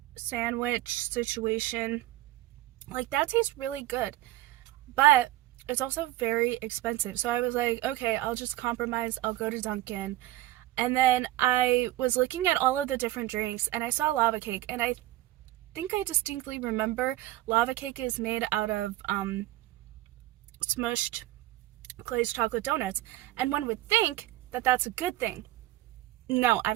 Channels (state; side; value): quieter; left; 16.0 dB